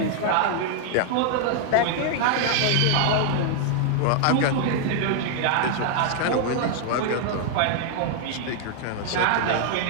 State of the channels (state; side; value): different; both; correlation 0.00